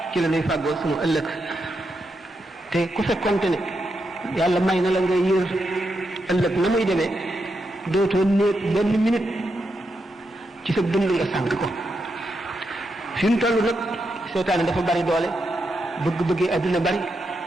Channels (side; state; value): both; normal; correlation 0.84